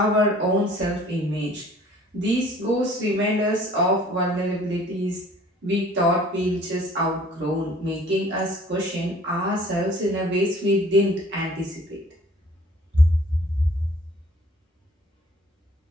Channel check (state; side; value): normal; both; correlation 0.53